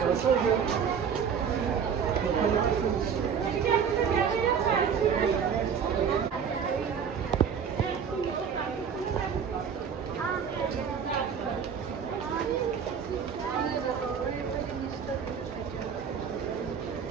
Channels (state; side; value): quieter; left; 7.0 dB